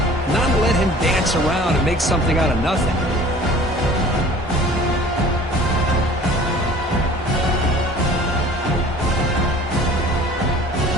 not let him dance around and make something out of nothing.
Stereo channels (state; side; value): normal; both; correlation 0.47